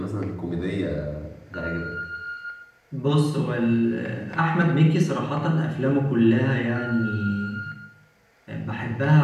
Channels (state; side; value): identical; both; correlation 1.00